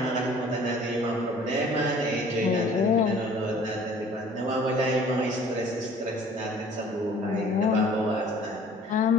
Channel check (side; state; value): both; normal; correlation 0.51